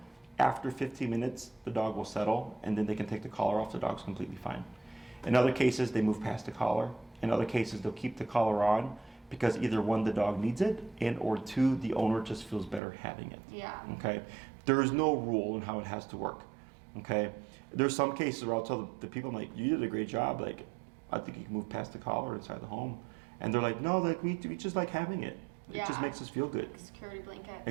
After 15 minutes, the dog will settle, and then they can take the collar off. The dog's completely fine. In other cases, they move past the collar. In other cases, they'll keep the collar on because either 1, the dog needs it, and or 2, the owner just feels better having it. Yeah. Okay. There is no rule in how it has to work. Okay. There's some cases where I'll tell the people, I'm like, you did a great job. Like, I think you can move past the collar inside the home. And they're like, no, like we just like having it. It just makes us feel good. Security blanket.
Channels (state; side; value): drops out; left; at 12.8 s